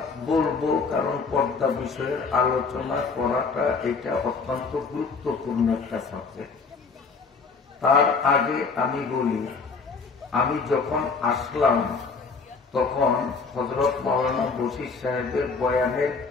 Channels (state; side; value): quieter; right; 4.7 dB